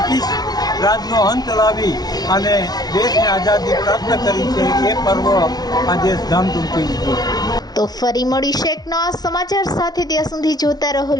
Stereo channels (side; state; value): right; late; 0.19 ms